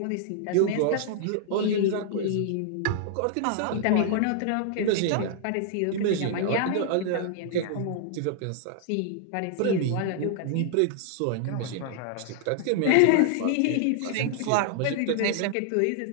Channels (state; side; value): different; both; correlation -0.01